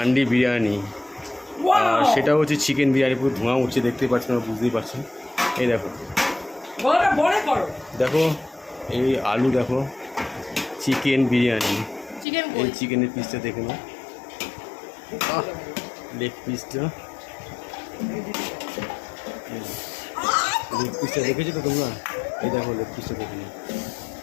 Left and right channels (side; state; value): right; drops out; at 12.2 s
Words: বিরিয়ানি। আর সেটা হচ্ছে চিকেন বিরিয়ানি, পুরো ধোঁয়া উঠছে, দেখতেই পাচ্ছেন, আমরা বুঝতেই পারছেন। এই দেখো দেখো, এই আলু দেখো, চিকেন বিরিয়ানি। এই চিকেনের পিসটা দেখে নাও, লেগ পিসটা, লেগ পিসটা দেখেছো তো তোমরা? এই দেখো লেগ পিসটা দেখে নাও,